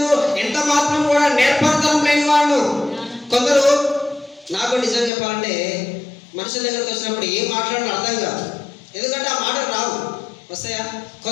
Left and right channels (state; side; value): drops out; right; at 5.1 s